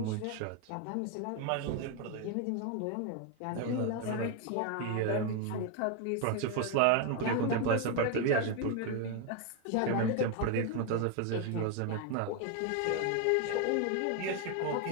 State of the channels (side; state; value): both; different; correlation 0.01